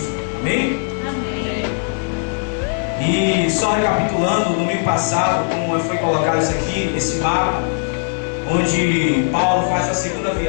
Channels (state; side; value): silent; right; digital silence